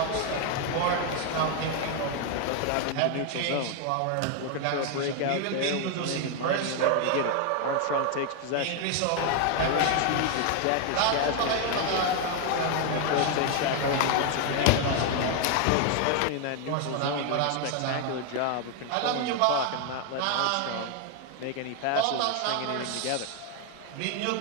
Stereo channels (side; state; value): both; different; correlation 0.01